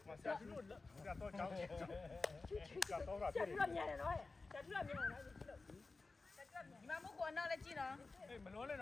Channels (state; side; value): quieter; right; 3.7 dB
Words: ရာတို့ကတော့ကြောင်းကတော့ရပြည့်တယ်မြန်တယ်နော်ဆရာတို့မြန်တယ်နော်ဒီမှာမကောနောက်လည်းကြည့်နော်အေးမလုံးနဲ့န